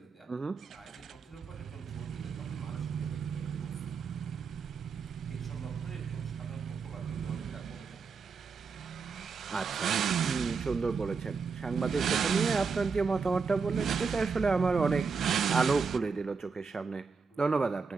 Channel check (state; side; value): quieter; left; 5.2 dB